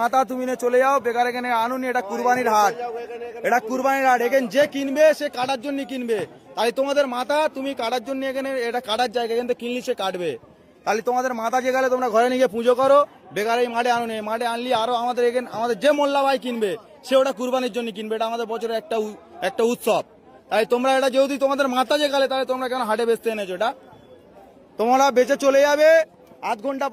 মাথা তুমি নিয়ে চলে যাও, বেকার এখানে আনুনি। এটা কুরবানির হাট, এখানে যে কিনবে সে কাটার জন্য কিনবে, তাই তোমাদের মাথা তুমি কাটার জন্য এখানে, এটা কাটার জায়গা, এখান থেকে কিনলি সে কাটবে, তাহলে তোমাদের মাথা যে গেলে তোমরা ঘরে নিয়ে পুজো করো, বেকার এই মাঠে আনুনি। মাঠে আনলি আরো আমাদের এখানে আমাদের যে মোল্লা ভাই কিনবে সে ওটা কুরবানির জন্য কিনবে, এটা আমাদের বছরের একটা উৎসব, তাই তোমরা এটা যেহেতু তোমাদের মাথা যে গেলে, তাহলে তোমরা কেন হাটে বেচতে এনেছো? এটা তোমরা বেচে চলে যাবে, আধ ঘন্টা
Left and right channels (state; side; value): identical; both; correlation 1.00